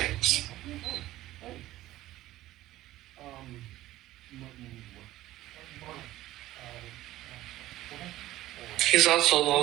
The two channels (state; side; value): quieter; left; 15.5 dB